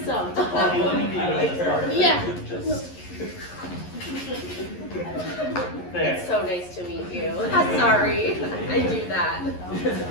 Let me be your Yeah. Just there. It's so nice to meet you. Sorry, I do that.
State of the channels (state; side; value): late; right; 11 ms